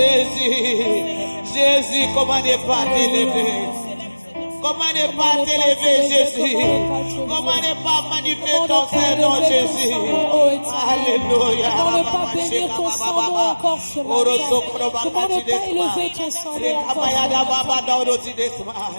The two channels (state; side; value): inverted; both; correlation -1.00